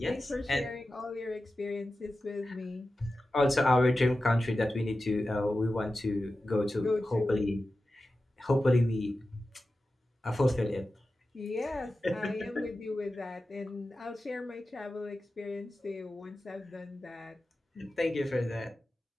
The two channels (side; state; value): both; normal; correlation 0.93